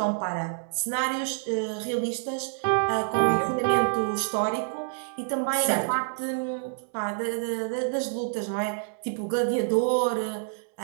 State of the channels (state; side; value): silent; left; digital silence